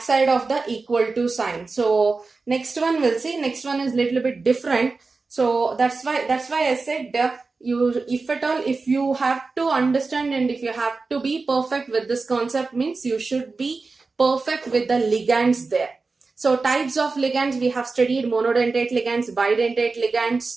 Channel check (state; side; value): quieter; left; 4.0 dB